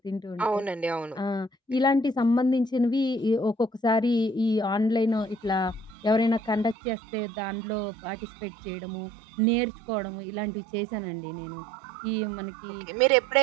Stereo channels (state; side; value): drops out; left; at 6.8 s